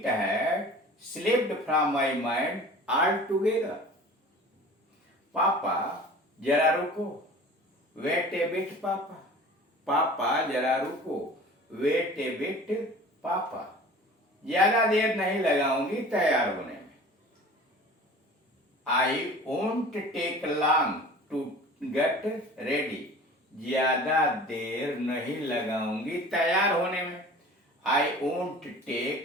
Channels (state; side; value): normal; both; correlation 0.42